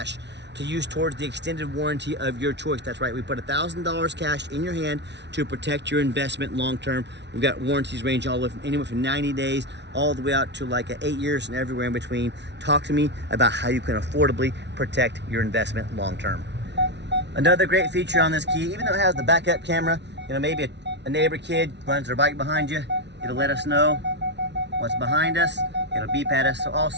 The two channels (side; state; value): left; late; 0.50 ms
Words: to use towards the extended warranty of your choice. That's right, we put $1,000 cash in your hand to protect your investment long term. We've got warranties range all the way from anywhere from 90 days all the way out to like 8 years and everywhere in between. Talk to me about how you can affordably protect your investment long term. Another great feature on this key, even though it has the backup camera, you know, maybe a neighbor kid runs their bike behind you, it'll let us know what's behind us, it'll beep at us. So